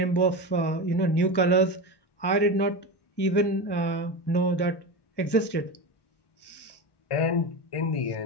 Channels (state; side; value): late; right; 1.1 ms